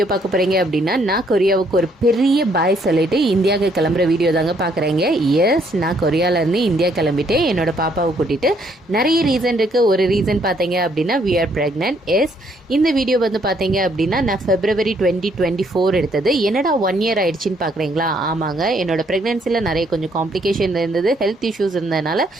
பார்க்க போகிறீங்க அப்படின்னா, நான் கொரியாவுக்கு ஒரு பெரிய பாய் சொல்லிட்டு இந்தியாவுக்கு கிளம்புற வீடியோ தாங்க பார்க்குறேங்க. எஸ், நான் கொரியாவிலேருந்து இந்தியா கிளம்பிட்டு என்னோட பாப்பாவை கூட்டிகிட்டு நிறைய ரீசன் இருக்குது. ஒரு ரீசன் பார்த்தீங்க அப்படின்னா வி ஆர் ப்ரெக்னென்ட். எஸ், இந்த வீடியோ வந்து பார்த்தீங்க அப்படின்னா நான் February 2024 எடுத்தது. என்னடா 1 year ஆயிடுச்சின்னு பார்க்குறீங்களா? ஆமாங்க, என்னோட ப்ரெக்னென்சியில் நிறைய கொஞ்சம் காம்ப்ளிகேஷன் இருந்தது, ஹெல்த் இஷ்யூஸ் இருந்ததுனால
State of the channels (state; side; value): normal; both; correlation 0.68